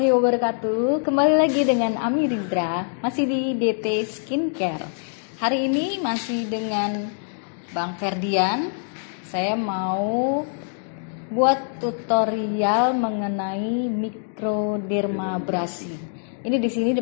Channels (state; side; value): silent; right; digital silence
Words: wabarakatuh. Kembali lagi dengan Ami Rizra, masih di DT Skincare. Hari ini masih dengan Bang Ferdian. Saya mau buat tutorial mengenai mikrodermabrasi. Ini di sini